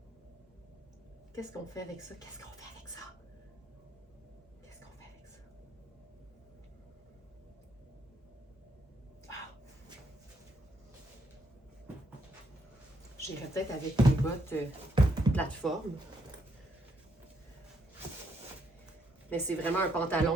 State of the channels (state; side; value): normal; both; correlation 0.74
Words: Qu'est-ce qu'on fait avec ça? Qu'est-ce qu'on fait avec ça? Qu'est-ce qu'on fait avec ça? Ah! J'irais peut-être avec les bottes plateforme. Mais c'est vraiment un